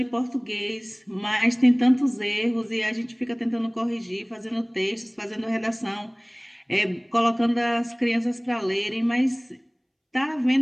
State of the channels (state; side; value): identical; both; correlation 1.00